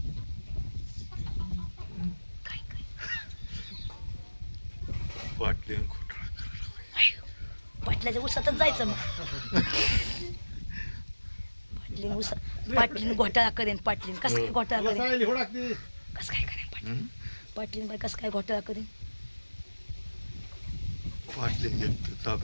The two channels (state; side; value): inverted; both; correlation -1.00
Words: वाटले आणि खोटं. पाटल्याच्या उसातच जायचं मग पाटलीन घोटाळा करेन पाटलीन कसं काय घोटाळा तुला करेन सांगितली हो टाकते. कसं काय करेन पाटलीन हं? पाटलीन बाई कसं काय घोटाळा करेन वाटले एक